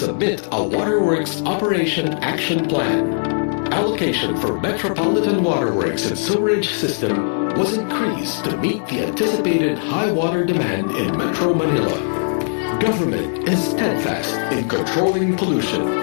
a Waterworks Operation Action Plan. Allocation for Metropolitan Waterworks and Sewerage System was increased to meet the anticipated high water demand in Metro Manila. Government is steadfast in controlling pollution.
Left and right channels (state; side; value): silent; right; digital silence